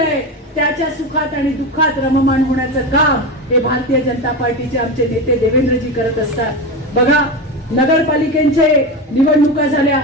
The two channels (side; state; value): both; normal; correlation 0.20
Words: त्याच्या सुखात आणि दुःखात रममाण होण्याचं काम हे भारतीय जनता पार्टीचे आमचे नेते देवेंद्रजी करत असतात. बघा, नगरपालिकेचे निवडणुका झाल्या,